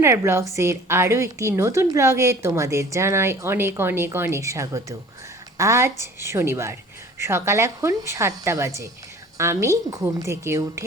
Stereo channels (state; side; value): normal; both; correlation 0.46